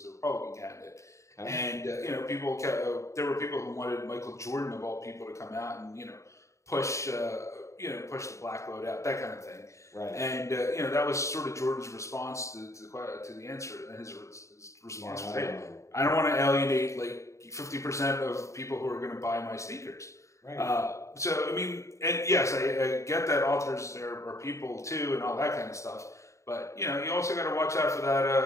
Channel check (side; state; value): right; late; 0.14 ms